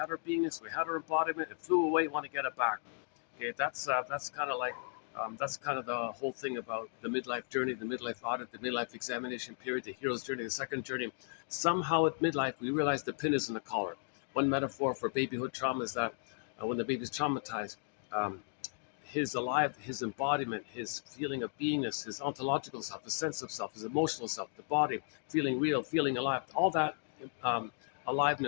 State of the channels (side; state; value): right; silent; 54 dB below the other